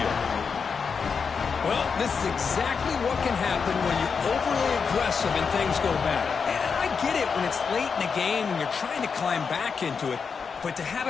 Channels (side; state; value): right; quieter; 5.7 dB